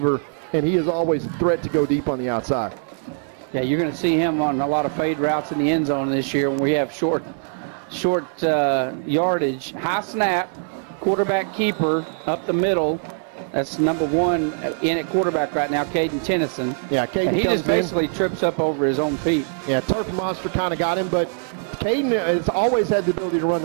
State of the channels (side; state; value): left; silent; 58 dB below the other